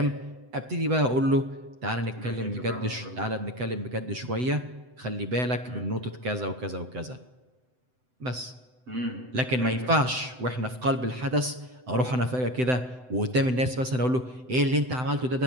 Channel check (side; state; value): left; late; 7.9 ms